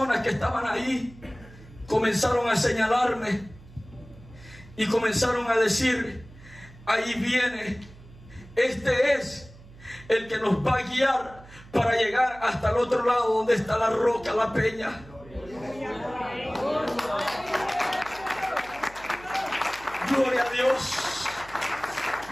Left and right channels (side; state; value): right; noise; hum, 21 dB below the sound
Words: que estaban ahí comenzaron a señalarme y comenzaron a decir: ahí viene, este es el que nos va a guiar para llegar hasta el otro lado donde está la roca, la peña. Gloria a Dios,